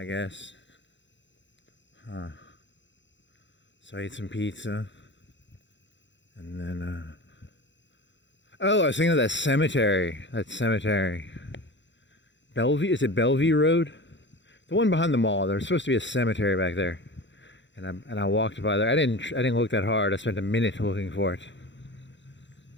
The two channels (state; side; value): late; right; 0.53 ms